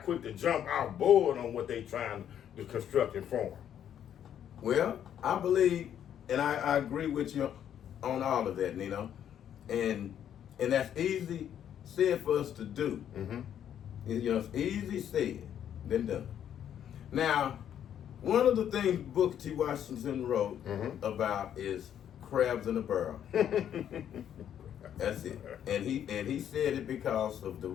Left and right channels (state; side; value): quieter; right; 9.8 dB